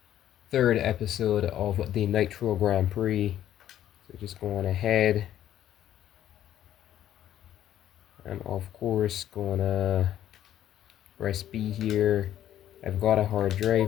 third episode of the Nitro Grand Prix. So just going ahead. And of course gonna press B here. I've got a hard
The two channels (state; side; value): quieter; right; 11.6 dB